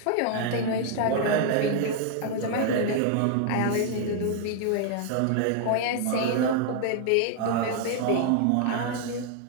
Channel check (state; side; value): different; both; correlation 0.00